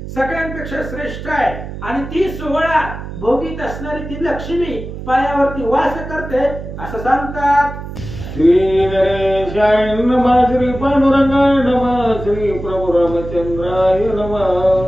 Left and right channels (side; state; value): right; noise; hum, 9 dB below the sound